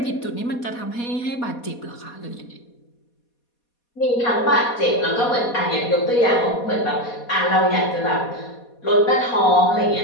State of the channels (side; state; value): right; late; 4.2 ms